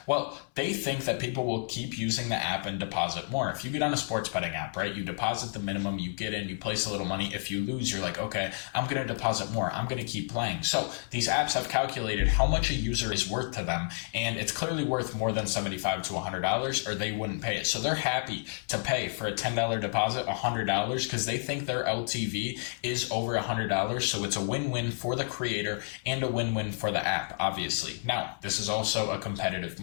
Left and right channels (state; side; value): silent; right; 58 dB below the other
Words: Well, they think that people will keep using the app and deposit more. If you get on a sports betting app, right, you deposit the minimum, you get in, you place a little money. If you lose, you're like, okay, I'm going to deposit more. I'm going to keep playing. So these apps have calculated how much a user is worth to them, and it's clearly worth more than $75 to $100, or they wouldn't pay it. So they're happy to pay for a $10 deposit $100 because they think their LTV is over $100. So it's a win-win for the creator and a win-win for the app, obviously. Now, this is also a competitive